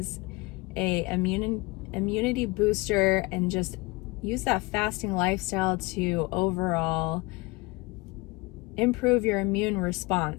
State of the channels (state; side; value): quieter; right; 24.3 dB